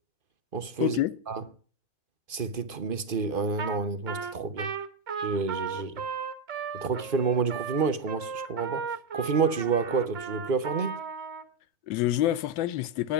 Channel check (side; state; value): left; late; 2.5 ms